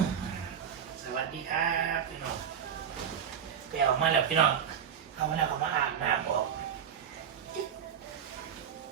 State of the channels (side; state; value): left; quieter; 8.2 dB